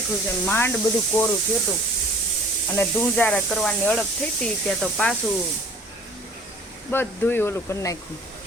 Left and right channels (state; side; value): normal; both; correlation 0.50